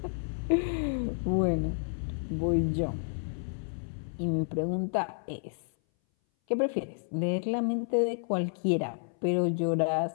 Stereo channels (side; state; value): right; silent; 57 dB below the other